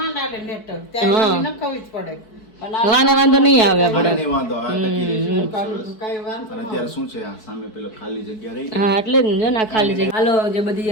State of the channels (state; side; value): late; right; 4.6 ms